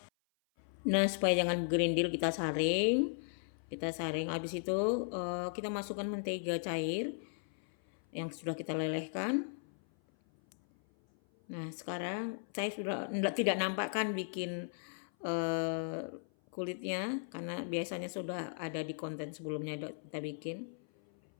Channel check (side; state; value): right; silent; 53 dB below the other